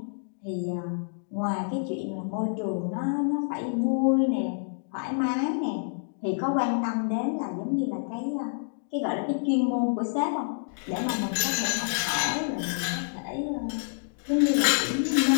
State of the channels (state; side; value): silent; right; digital silence